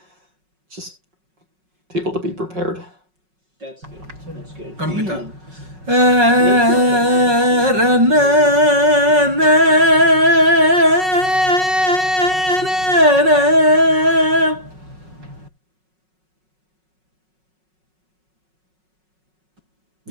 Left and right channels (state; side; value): late; left; 5.4 ms